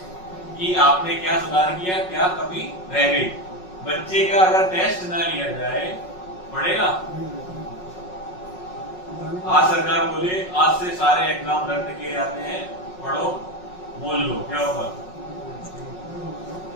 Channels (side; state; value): right; late; 5.4 ms